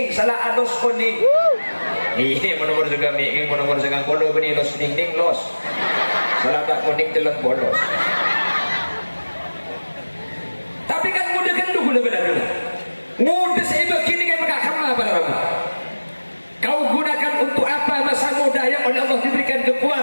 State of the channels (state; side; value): inverted; both; correlation -1.00